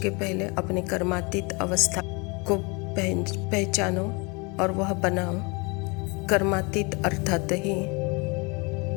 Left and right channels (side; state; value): right; quieter; 29.6 dB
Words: पहले अपने कर्मातीत अवस्था को पहचानो और वह बनाओ। कर्मातीत अर्थात ही